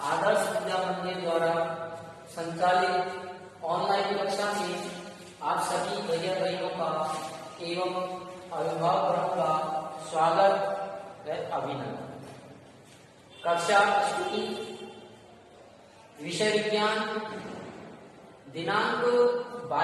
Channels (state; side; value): identical; both; correlation 1.00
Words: आदर्श विद्या मंदिर द्वारा संचालित ऑनलाइन कक्षा में आप सभी भैया बहनों का एवं अभिभावकों का स्वागत व अभिनंदन। कक्षा स्तुति, विषय विज्ञान, दिनांक